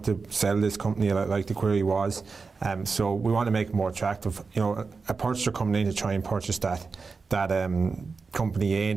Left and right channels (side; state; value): left; quieter; 4.6 dB